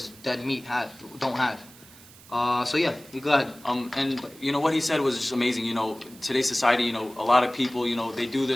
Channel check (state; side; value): noise; right; hiss, 22 dB below the sound